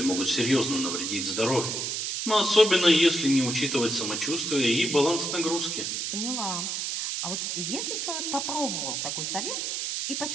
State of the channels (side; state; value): right; noise; hiss, 2 dB below the sound